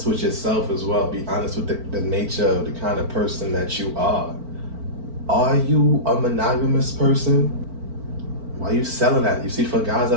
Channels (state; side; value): late; left; 4.4 ms